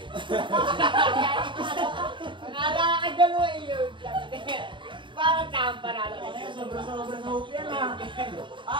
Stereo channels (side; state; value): left; late; 0.23 ms